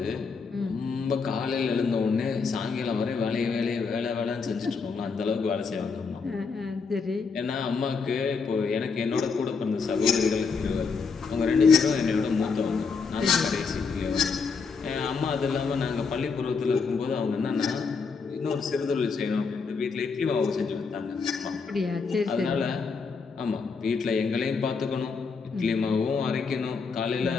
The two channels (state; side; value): quieter; right; 5.1 dB